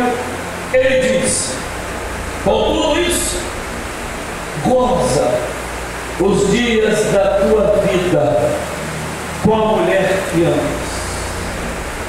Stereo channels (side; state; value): both; identical; correlation 1.00